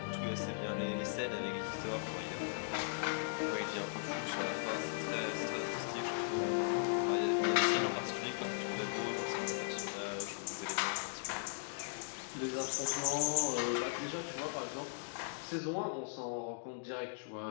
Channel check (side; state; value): right; silent; digital silence